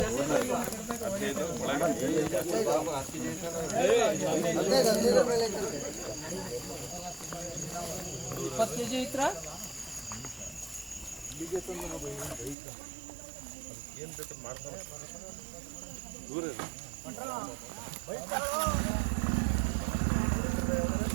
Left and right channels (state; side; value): drops out; left; at 12.6 s